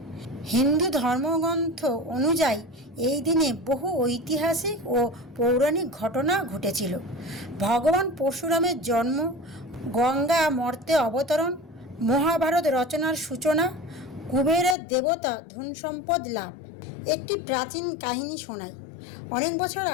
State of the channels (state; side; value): drops out; right; at 14.8 s